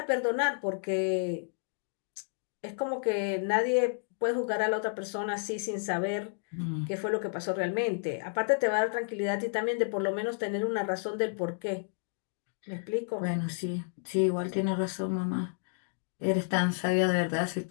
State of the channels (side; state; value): right; silent; digital silence